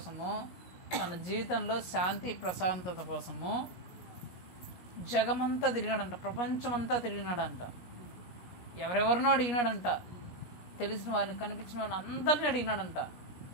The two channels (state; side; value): late; right; 17 ms